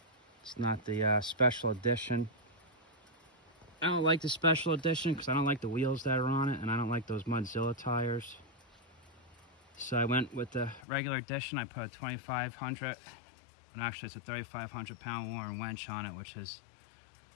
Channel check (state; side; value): drops out; right; at 10.8 s